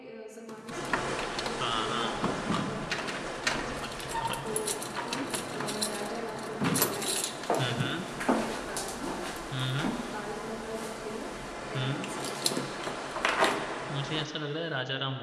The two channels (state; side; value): identical; both; correlation 1.00